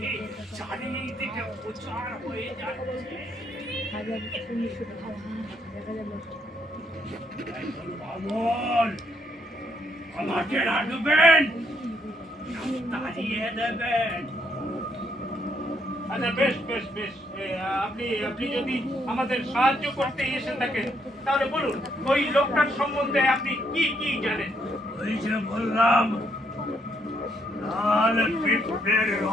চারিদিকে প্রচার হয়ে যাচ্ছে। বামন, আমাকে রাখবেন, তাড়িয়ে দেবেন। আচ্ছা, বেশ বেশ বেশ, আপনি যদি আমাদের সাহায্য করতে এসে থাকেন তাহলে বলুন ওই লোকটার সম্বন্ধে আপনি কি কি জানেন? ওই যে বললাম, লাল পিঁপড়ের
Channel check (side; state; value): both; normal; correlation 0.73